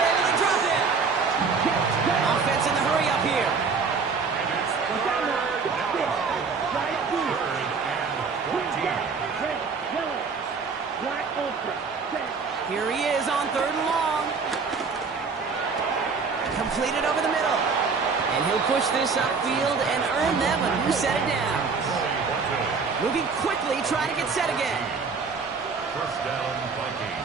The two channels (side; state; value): left; quieter; 5.0 dB